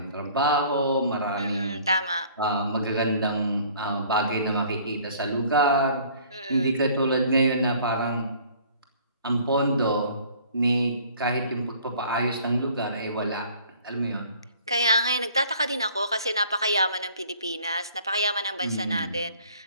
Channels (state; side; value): inverted; both; correlation -0.54